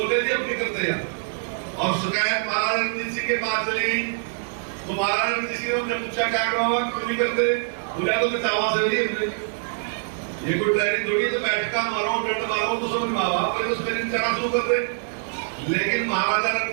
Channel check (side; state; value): left; silent; digital silence